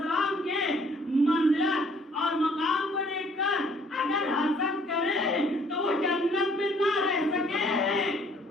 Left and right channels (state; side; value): normal; both; correlation 0.60